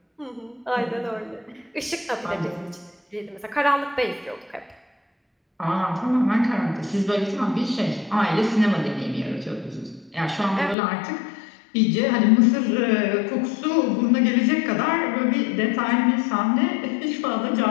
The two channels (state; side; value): drops out; right; at 10.8 s